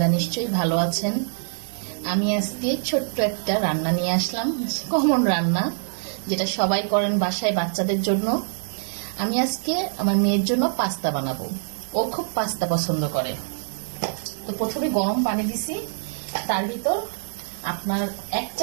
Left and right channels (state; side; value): silent; left; 62 dB below the other